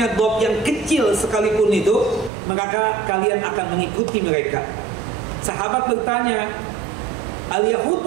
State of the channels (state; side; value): drops out; left; at 2.3 s